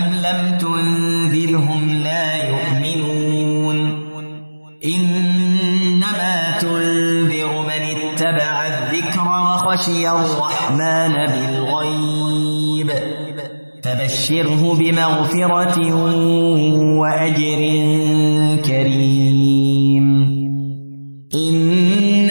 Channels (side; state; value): both; inverted; correlation -1.00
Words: لم تنذرهم لا يؤمنون إنما تنذر من اتبع الذكر وخشي الرحمن بالغيب فبشره بمغفرة وأجر كريم.